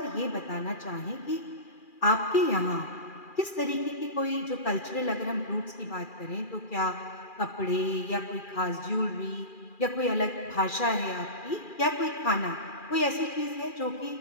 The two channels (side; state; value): right; late; 2.4 ms